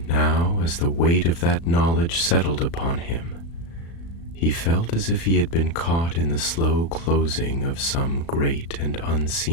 now, as the weight of that knowledge settled upon him, he felt as if he had been caught in the slow closing of some great and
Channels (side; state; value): right; late; 35 ms